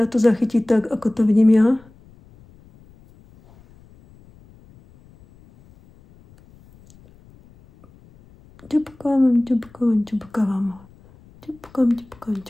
to zachytí tak, ako to vidím ja. Ťupkám,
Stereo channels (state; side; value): noise; left; rumble, 27 dB below the sound